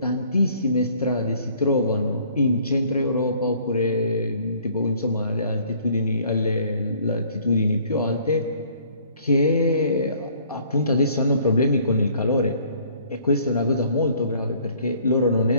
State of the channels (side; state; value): both; inverted; correlation -0.59